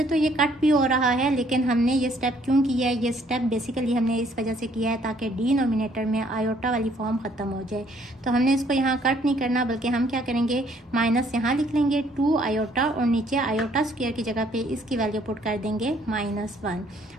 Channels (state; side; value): normal; both; correlation 0.64